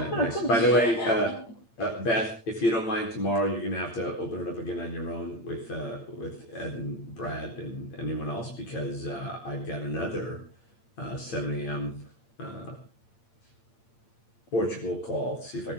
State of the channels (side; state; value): right; late; 8.8 ms